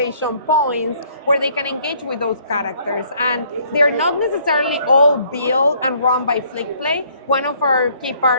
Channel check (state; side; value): inverted; both; correlation -0.63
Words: points where they can engage with those characters. And they're not necessarily all built and run by Flickplay. One of our key